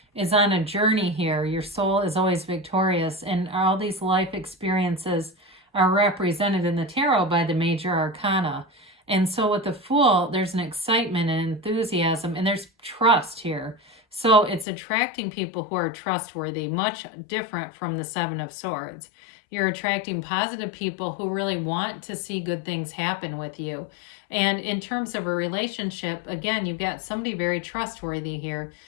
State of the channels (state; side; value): drops out; right; at 14.7 s